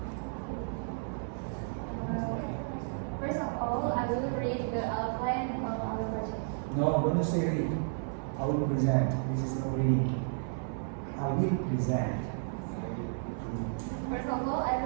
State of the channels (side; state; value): left; silent; 56 dB below the other